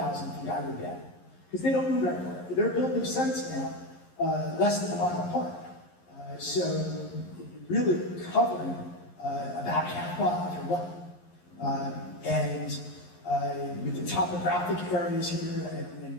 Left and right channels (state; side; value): late; right; 11 ms